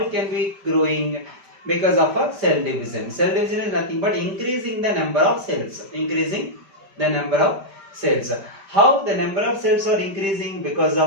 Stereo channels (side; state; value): left; late; 5.1 ms